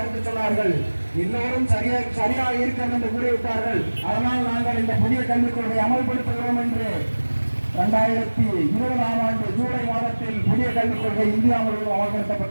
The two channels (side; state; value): both; inverted; correlation -1.00